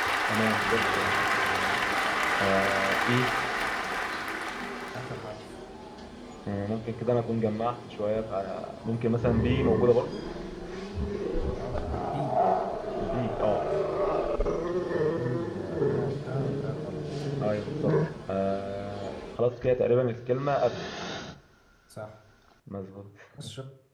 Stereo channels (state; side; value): identical; both; correlation 1.00